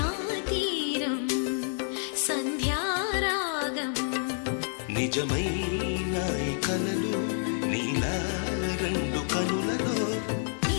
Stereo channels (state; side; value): silent; right; digital silence